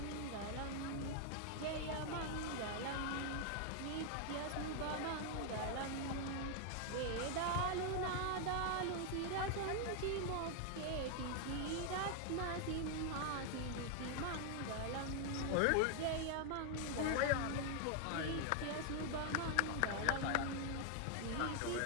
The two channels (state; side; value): different; both; correlation 0.00